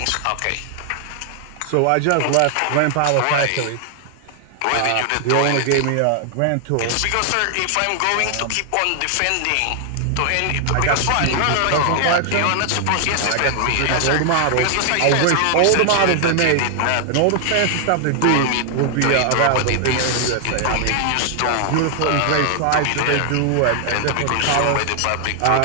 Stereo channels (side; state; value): both; different; correlation 0.00